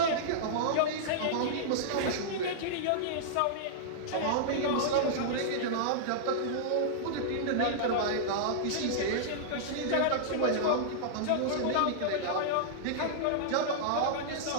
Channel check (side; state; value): both; different; correlation -0.02